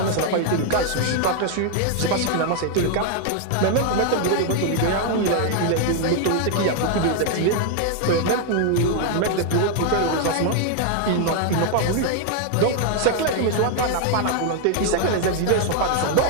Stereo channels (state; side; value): different; both; correlation 0.00